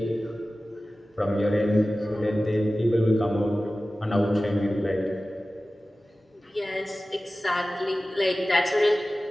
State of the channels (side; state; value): both; normal; correlation 0.96